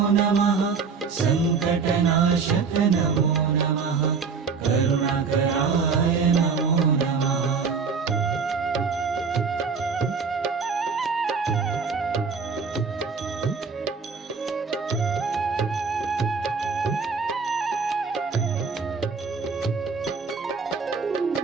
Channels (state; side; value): quieter; left; 5.3 dB